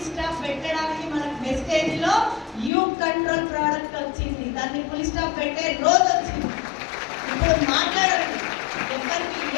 స్టాప్ పెట్టడానికి మనకు మెసేజ్ లో యూ కంట్రోల్ ప్రోడక్ట్ వచ్చింది. దాన్ని ఫుల్ స్టాప్ పెట్టే రోజు వచ్చింది. ఇప్పుడు మాట్లాడండి, ఎవరికి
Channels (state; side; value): drops out; right; at 2.7 s